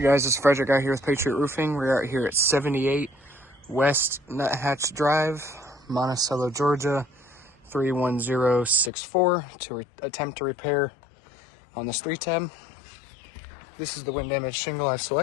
guys, it's Frederick out here with Patriot Roofing. We're out here at 78 West Nuthatch Drive, Monticello, Georgia, 31064 to attempt to repair on this 3-tab. This is the wind damage shingle I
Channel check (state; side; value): drops out; right; at 8.9 s